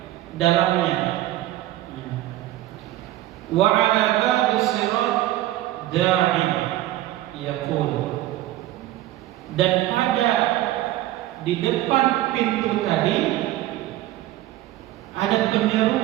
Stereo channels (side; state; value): left; quieter; 14.9 dB